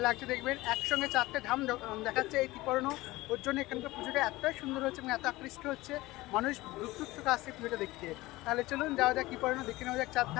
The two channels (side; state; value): right; quieter; 19.3 dB